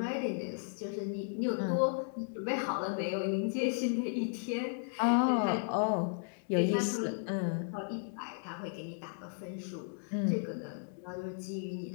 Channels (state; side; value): silent; right; digital silence